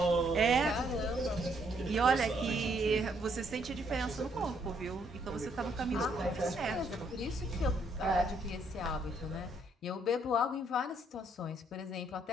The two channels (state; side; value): normal; both; correlation 0.70